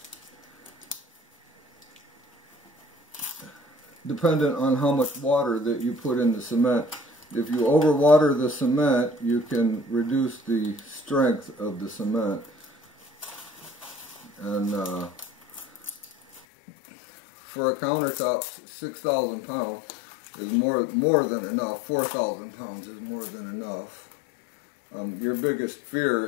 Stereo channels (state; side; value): drops out; right; at 16.4 s